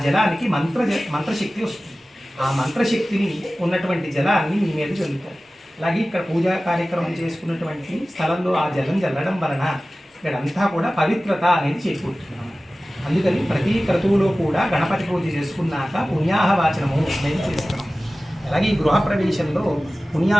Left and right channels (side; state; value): both; normal; correlation 0.96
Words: జలానికి మంత్రశక్తి వస్తుంది. ఆ మంత్రశక్తిని ఉన్నటువంటి జలాన్ని మీ మీద చల్లుతారు. అలాగే ఇక్కడ పూజా కార్యక్రమం చేసుకున్నటువంటి స్థలంలో ఆ జలం చల్లడం వలన ఇక్కడంతా కూడా పవిత్రత అనేది చేకూరుతున్నాము. అందుకని ప్రతి క్రతువులో కూడా గణపతి పూజ చేసుకున్నాక పుణ్యాహవాచనము అనేది చేస్తున్నాం. అలాగే ఈ గృహప్రవేశంలో